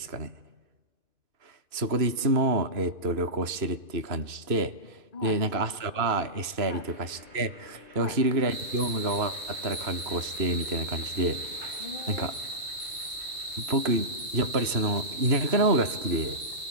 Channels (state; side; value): late; left; 3.0 ms